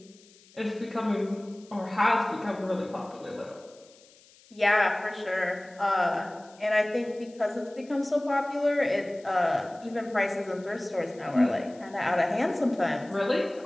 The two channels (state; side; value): noise; left; hiss, 27 dB below the sound